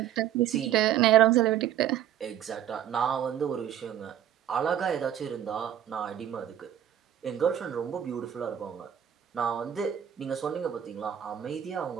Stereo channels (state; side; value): quieter; left; 10.4 dB